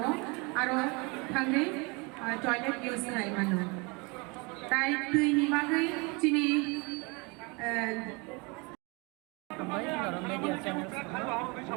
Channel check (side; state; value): left; quieter; 29.0 dB